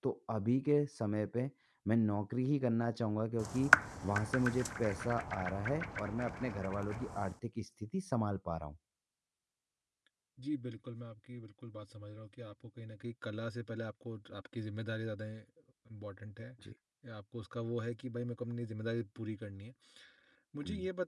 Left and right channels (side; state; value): both; identical; correlation 1.00